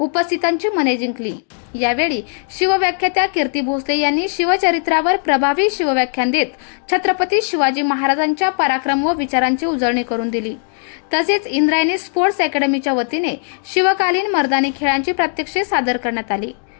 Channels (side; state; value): right; silent; 58 dB below the other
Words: मने जिंकली. यावेळी शिवव्याख्यात्या कीर्ती भोसले यांनी शिवचरित्रावर प्रभावी शिवव्याख्यान देत छत्रपती शिवाजी महाराजांच्या पराक्रम व विचारांची उजळणी करून दिली. तसेच इंद्रायणी स्पोर्ट्स अकॅडमीच्या वतीने शिवकालीन मर्दानी खेळांची प्रात्यक्षिके सादर करण्यात आली.